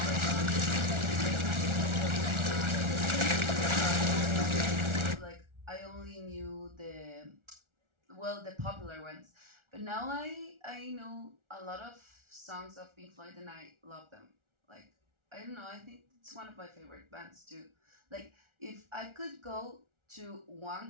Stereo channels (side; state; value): left; late; 1.4 ms